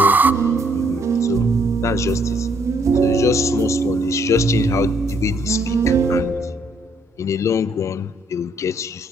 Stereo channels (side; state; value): both; normal; correlation 0.69